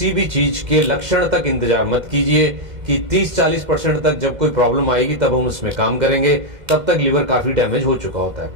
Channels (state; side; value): late; left; 2.1 ms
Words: भी चीज के लक्षण तक इंतजार मत कीजिए कि 30-40% तक जब कोई प्रॉब्लम आएगी तब हम उसमें काम करेंगे, तब तक लिवर काफी डैमेज हो चुका होता है।